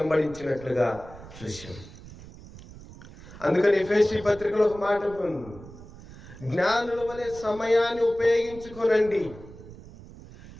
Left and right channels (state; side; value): noise; right; rumble, 17 dB below the sound